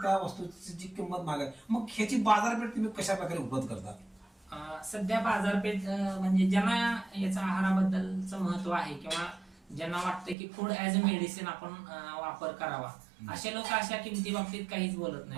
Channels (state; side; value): drops out; left; at 10.4 s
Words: त्या वस्तूची जी किंमत महाग आहे. मग ह्याची बाजारपेठ तुम्ही कशा प्रकारे उपलब्ध करता? सध्या बाजारपेठ म्हणजे ज्यांना याचा आहाराबद्दलचं महत्व आहे किंवा ज्यांना वाटतं की फूड ऍज अ मेडिसिन आपण वापर करावा, असे लोक अशा किमती बाबतीत काहीच बोलत